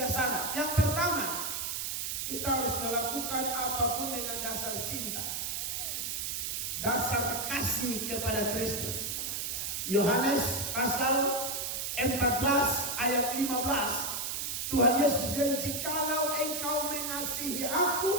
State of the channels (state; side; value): noise; right; hiss, 2 dB below the sound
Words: syarat. Yang pertama, kita harus melakukan apapun dengan dasar cinta, dasar kasih kepada Kristus. Yohanes pasal 14 ayat 15, Tuhan Yesus bilang, jikalau engkau mengasihi